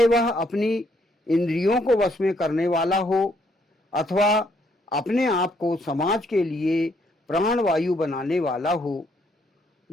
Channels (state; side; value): normal; both; correlation 0.70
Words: वह अपनी इंद्रियों को वश में करने वाला हो अथवा अपने आप को समाज के लिए प्राणवायु बनाने वाला हो,